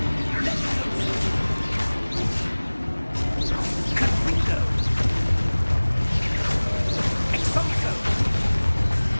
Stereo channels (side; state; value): both; inverted; correlation -1.00